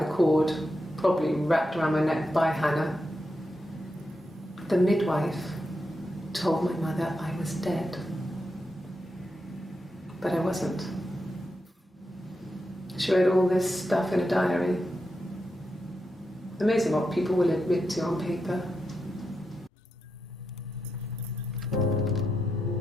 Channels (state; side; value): normal; both; correlation 0.86